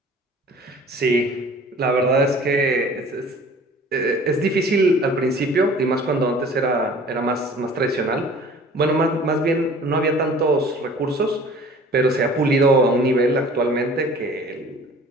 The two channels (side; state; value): both; normal; correlation 0.47